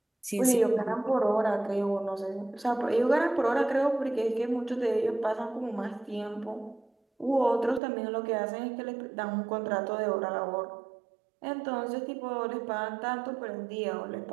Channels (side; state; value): left; drops out; at 7.8 s